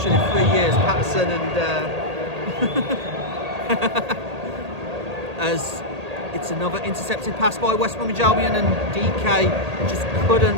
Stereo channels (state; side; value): late; left; 1.8 ms